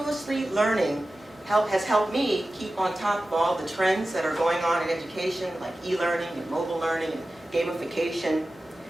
learning has helped me keep on top of all the trends that are going on in education, like e-learning and mobile learning and gamification.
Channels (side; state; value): both; normal; correlation 0.95